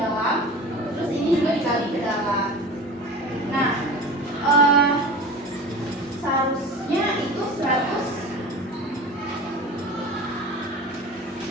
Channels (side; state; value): both; normal; correlation 0.35